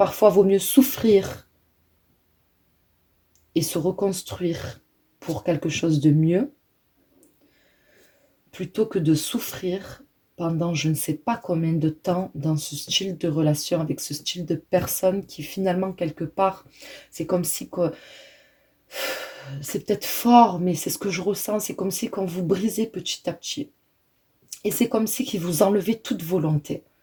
vaut mieux souffrir et se reconstruire pour quelque chose de mieux, plutôt que de souffrir pendant je ne sais pas combien de temps dans ce style de relation, avec ce style de personne qui finalement, quelque part, c'est comme si... C'est peut-être fort, mais c'est ce que je ressens. C'est comme si qu'on vous brisait petit à petit. Et c'est comme si qu'il vous enlevait toute volonté.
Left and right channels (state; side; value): identical; both; correlation 1.00